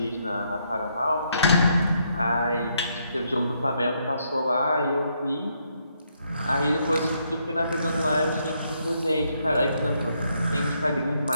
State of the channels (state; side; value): inverted; both; correlation -0.75